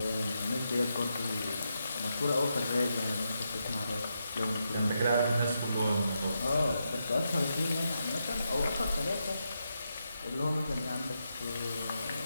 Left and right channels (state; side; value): inverted; both; correlation -0.84